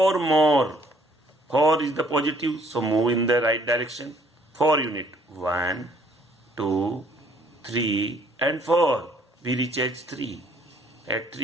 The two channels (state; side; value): normal; both; correlation 0.62